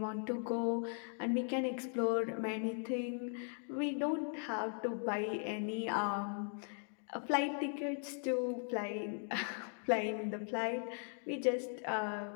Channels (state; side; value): silent; right; 52 dB below the other